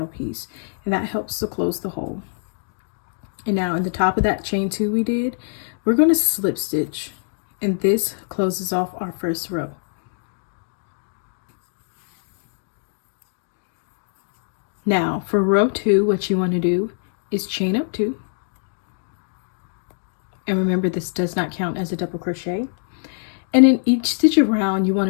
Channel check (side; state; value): right; silent; digital silence